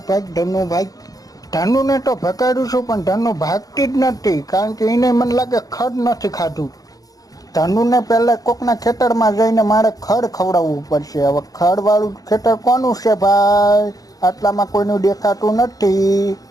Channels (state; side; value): late; right; 0.18 ms